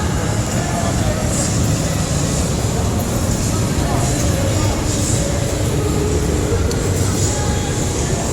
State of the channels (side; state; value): both; identical; correlation 1.00